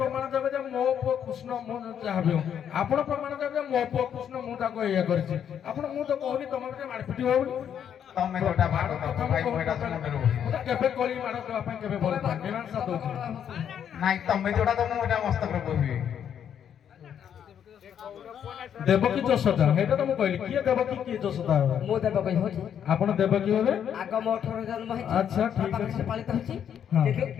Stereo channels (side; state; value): right; quieter; 8.9 dB